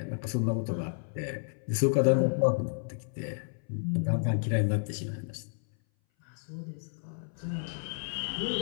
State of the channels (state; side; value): silent; right; 57 dB below the other